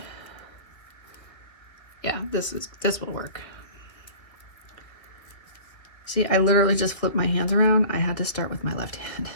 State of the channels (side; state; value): right; late; 1.9 ms